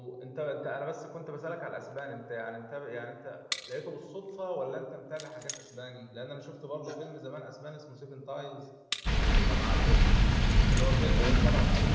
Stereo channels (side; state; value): both; identical; correlation 1.00